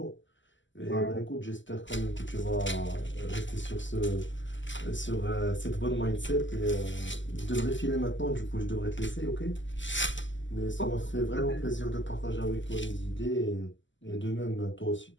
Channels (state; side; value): late; right; 0.54 ms